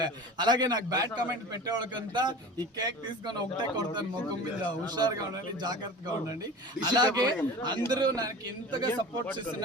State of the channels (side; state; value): both; normal; correlation 0.36